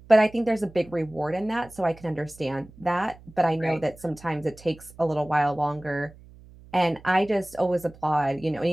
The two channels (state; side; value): noise; right; hum, 22 dB below the sound